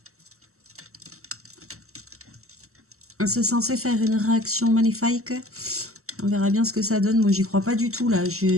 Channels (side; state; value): left; late; 0.63 ms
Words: C'est censé faire une réaction magnifique. On verra bien ce que ça donne. Moi, j'y crois pas du tout, là.